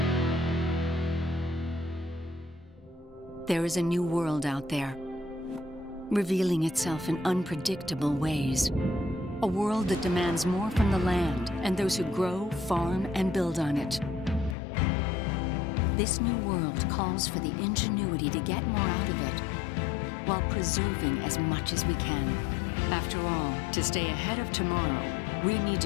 There is a new world out there, revealing itself in unpredictable ways. A world that demands more from the land and those who grow, farm, and build on it. This new world calls for the ingenuity to get more out of it, while preserving as much as we can. After all, to stay ahead of tomorrow, we need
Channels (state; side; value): drops out; right; at 14.6 s